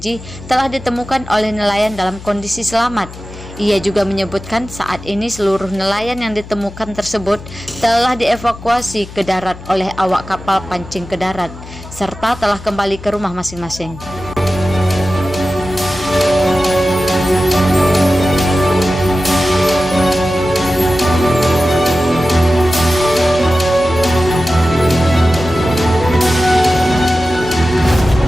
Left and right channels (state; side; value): noise; left; hum, 15 dB below the sound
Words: telah ditemukan oleh nelayan dalam kondisi selamat. Ia juga menyebutkan saat ini seluruh nelayan yang ditemukan tersebut telah dievakuasi ke darat oleh awak kapal pancing ke darat, serta telah kembali ke rumah masing-masing.